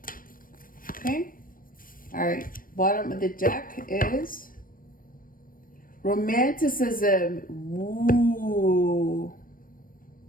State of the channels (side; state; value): right; late; 0.41 ms